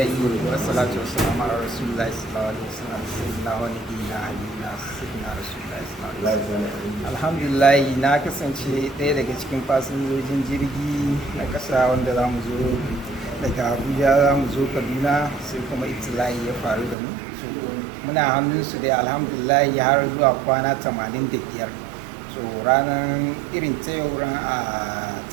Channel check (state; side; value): drops out; left; at 16.9 s